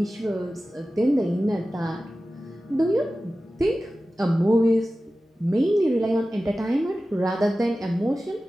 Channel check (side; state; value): both; normal; correlation 0.95